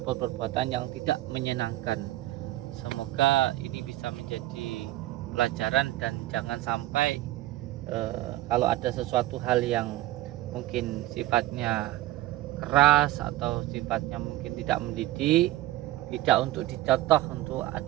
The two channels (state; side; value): quieter; left; 16.4 dB